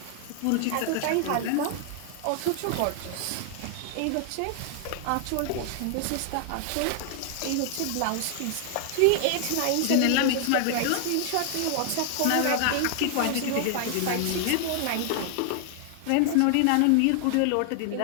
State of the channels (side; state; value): both; different; correlation 0.00